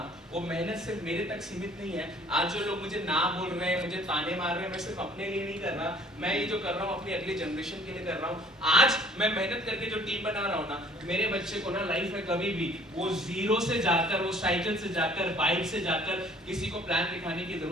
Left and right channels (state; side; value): normal; both; correlation 0.55